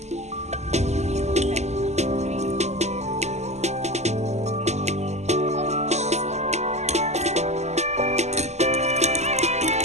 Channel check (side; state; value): left; late; 0.33 ms